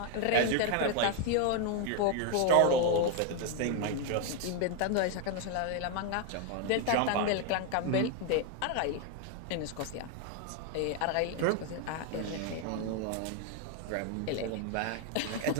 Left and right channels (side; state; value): both; different; correlation 0.01